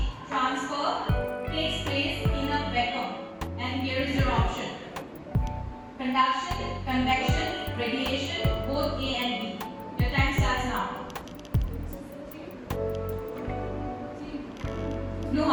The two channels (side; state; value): both; identical; correlation 1.00